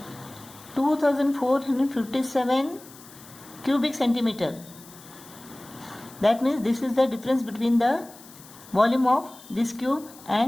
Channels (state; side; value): noise; left; hiss, 21 dB below the sound